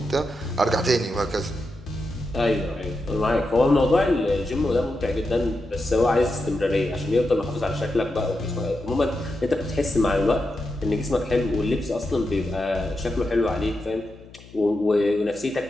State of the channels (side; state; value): left; noise; hum, 21 dB below the sound